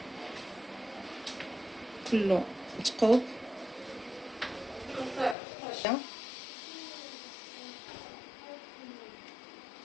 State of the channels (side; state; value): right; drops out; at 5.4 s